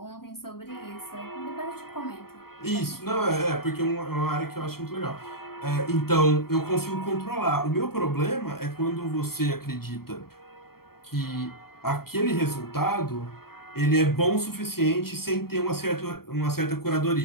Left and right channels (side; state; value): right; late; 0.94 ms